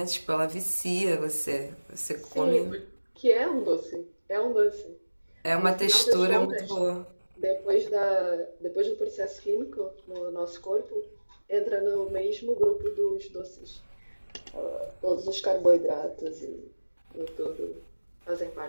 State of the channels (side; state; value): both; inverted; correlation -1.00